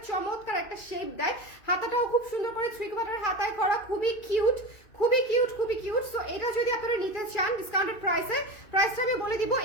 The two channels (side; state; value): right; late; 2.5 ms